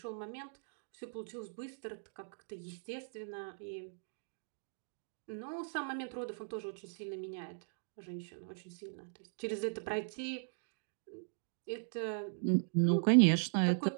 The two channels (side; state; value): left; silent; digital silence